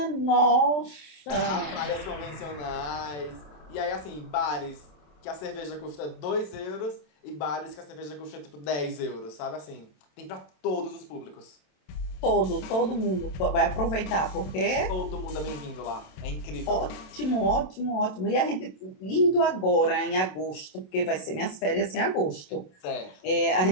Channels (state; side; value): late; right; 27 ms